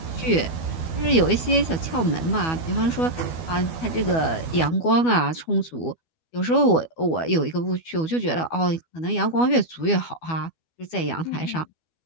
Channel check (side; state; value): right; late; 12 ms